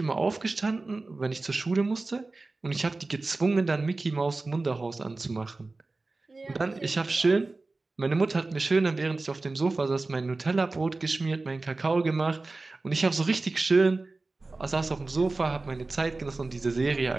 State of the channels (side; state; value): left; quieter; 3.4 dB